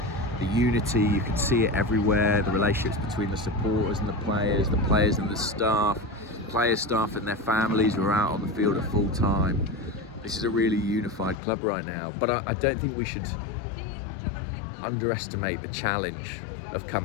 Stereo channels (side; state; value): right; drops out; at 11.4 s